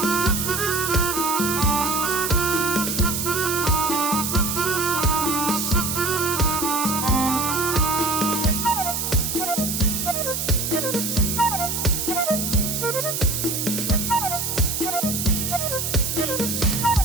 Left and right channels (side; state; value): right; noise; hiss, 2 dB below the sound